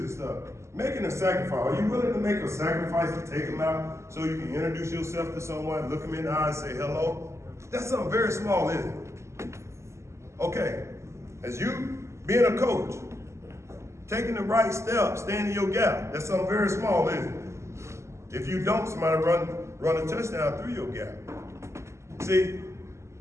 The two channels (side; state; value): left; late; 0.13 ms